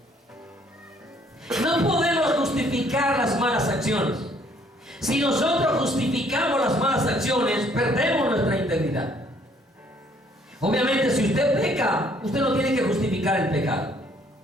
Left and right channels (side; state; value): both; normal; correlation 0.63